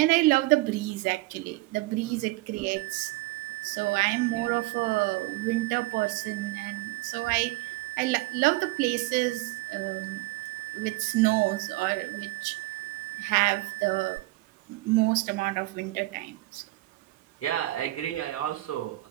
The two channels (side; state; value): left; quieter; 20.2 dB